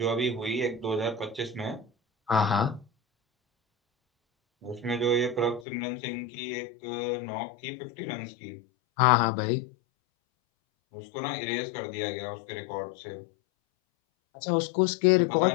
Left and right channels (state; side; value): drops out; right; at 5.7 s